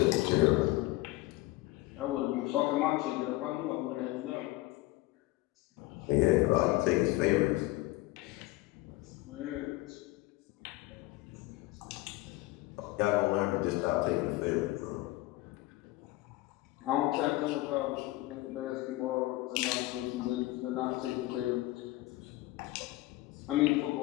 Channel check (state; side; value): quieter; right; 19.1 dB